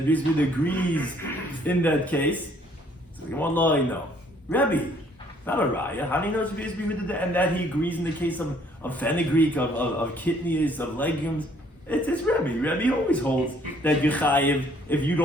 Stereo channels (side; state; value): both; normal; correlation 0.62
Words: agrees in that case. So you want to know, Rebbe, not a raya. How do you know it's Beitzah that, and that he agrees in the case of fenugreek, of kidneys, of legumes? It's Rebbe. Rebbe always holds that you chayiv if you